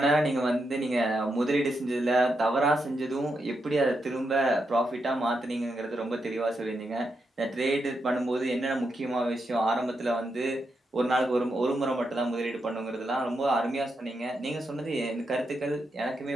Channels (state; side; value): normal; both; correlation 0.84